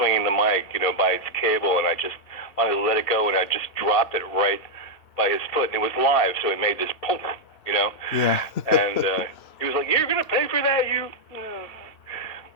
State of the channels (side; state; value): right; late; 2.9 ms